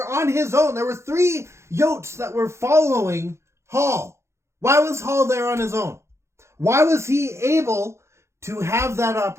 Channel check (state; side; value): late; left; 0.13 ms